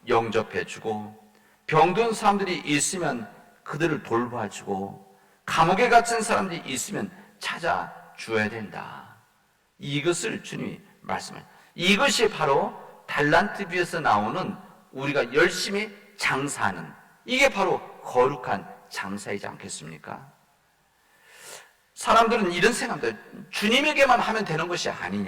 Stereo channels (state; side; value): identical; both; correlation 1.00